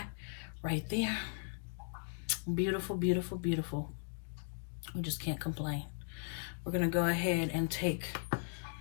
right there. Beautiful, beautiful, beautiful. We just can't complain. We're going to go ahead and take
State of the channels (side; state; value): right; silent; digital silence